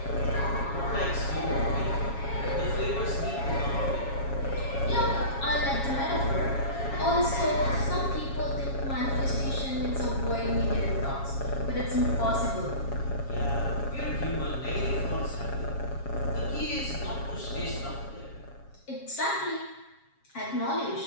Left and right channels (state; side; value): late; right; 7.3 ms